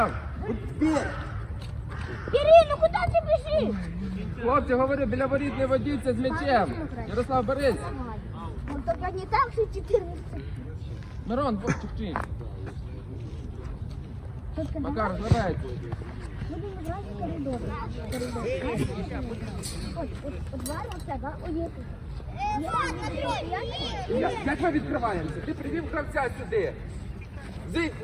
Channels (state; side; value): identical; both; correlation 1.00